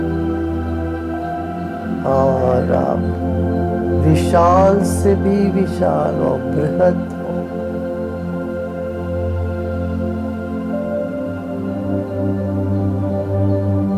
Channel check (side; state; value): both; identical; correlation 1.00